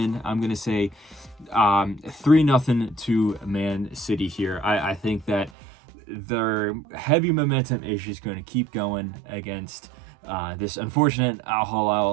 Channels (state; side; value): drops out; left; at 5.5 s